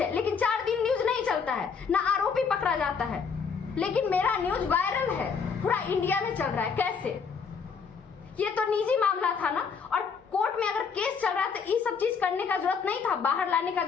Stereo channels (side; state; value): right; quieter; 5.9 dB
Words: है, लेकिन 4 दिन न्यूज नहीं चलता है, ना आरोपी पकड़ा जाता है। लेकिन मेरा न्यूज वायरल है, पूरा इंडिया में चल रहा है। कैसे? ये तो निजी मामला था ना, और कोर्ट में अगर केस चल रहा है तो ये सब चीज करने का जरूरत नहीं था, बाहर लाने का